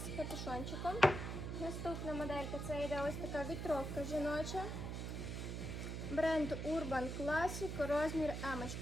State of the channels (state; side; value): noise; right; hum, 4 dB below the sound